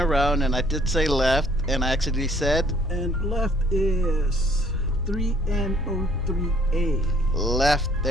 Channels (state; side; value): normal; both; correlation 0.61